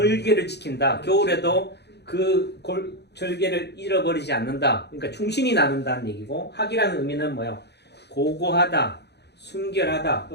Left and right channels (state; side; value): late; right; 0.49 ms